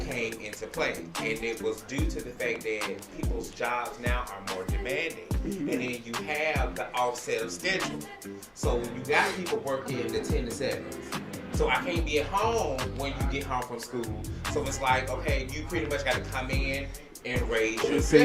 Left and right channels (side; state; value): both; identical; correlation 1.00